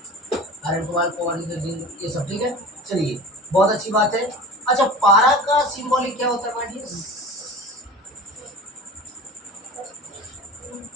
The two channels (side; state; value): both; normal; correlation 0.36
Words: Iron, cobalt, cobalt, zinc, ये सब ठीक है। चलिए, बहुत अच्छी बात है। अच्छा, पारा का सिंबॉलिक क्या होता है माय डियर?